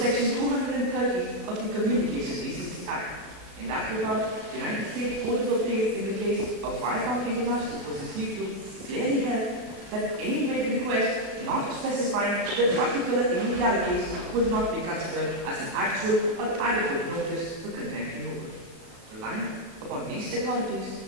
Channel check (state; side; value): late; left; 36 ms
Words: 230 of the Communication Decency Act. In that regard, the United States Court of Appeals in the case of Viacom International versus YouTube clearly held that any vague request not specifying the particular illegalities would not be considered as an actual or adequate notice for content removal. Relying upon these authorities,